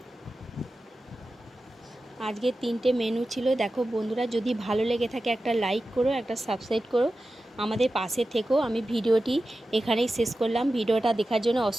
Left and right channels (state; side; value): normal; both; correlation 0.93